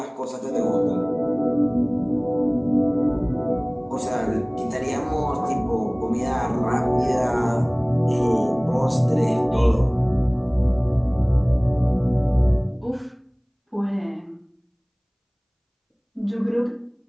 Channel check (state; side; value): identical; both; correlation 1.00